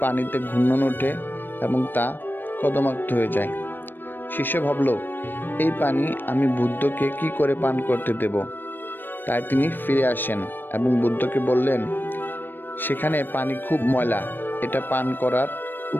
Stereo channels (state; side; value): late; right; 0.094 ms